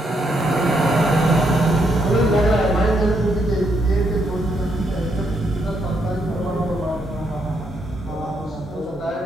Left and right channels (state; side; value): normal; both; correlation 0.76